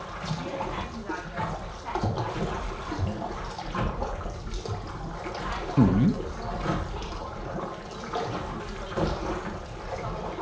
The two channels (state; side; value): identical; both; correlation 1.00